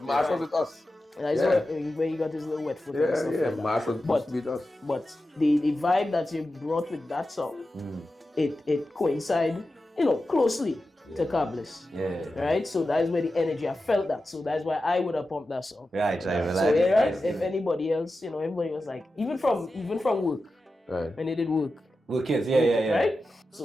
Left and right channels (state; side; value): normal; both; correlation 0.92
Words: Marsh was with us. That's where you got his little wet foot and stuff like that. Marsh was supposed to be with us. But the vibe that you brought with that song, it coincide, closely to Kablis. Yeah. Right? So that's where the energy, I felt that. So that's why I would have pumped that song. Right. So right? If anybody else, everybody was like, even from work, Right. when they did work. Work kids, yeah. Right?